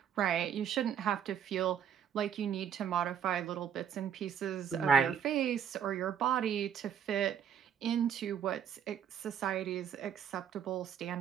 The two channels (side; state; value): left; quieter; 8.4 dB